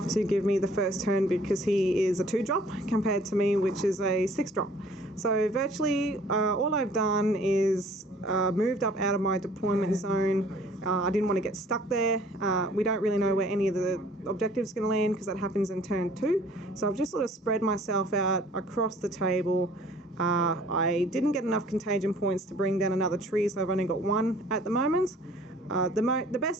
to give me the first turn because he is a 2-drop compared to me, which is a 6-drop. So virtually all I've done is moved up out of my deployment zone. I didn't want to get stuck there. We don't really know where any of the objectives are going to land because that happens in turn 2. So I've just sort of spread myself out across the table. I didn't get enough contagion points to bring down another tree, so I've only got 1 at the moment. The best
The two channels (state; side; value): normal; both; correlation 0.54